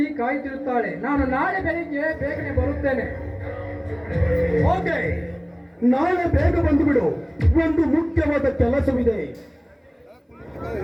ಕಾಯ್ತಿರುತ್ತಾಳೆ. ನಾನು ನಾಳೆ ಬೆಳಿಗ್ಗೆ ಬೇಗನೆ ಬರುತ್ತೇನೆ. ಓಕೆ, ನಾಳೆ ಬೇಗ ಬಂದು ಬಿಡು. ಒಂದು ಮುಖ್ಯವಾದ ಕೆಲಸವಿದೆ.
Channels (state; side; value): identical; both; correlation 1.00